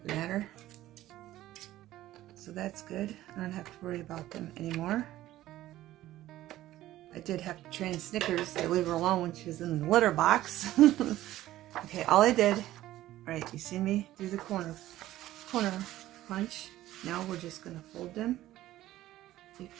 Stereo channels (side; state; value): left; quieter; 14.8 dB